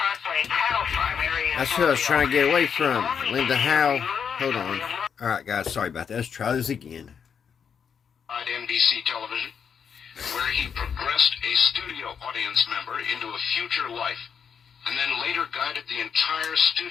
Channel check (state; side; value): quieter; right; 7.1 dB